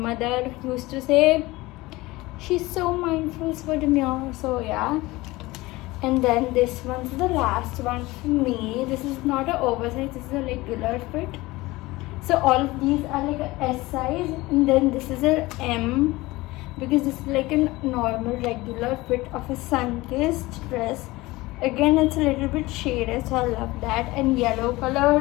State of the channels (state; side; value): quieter; right; 20.3 dB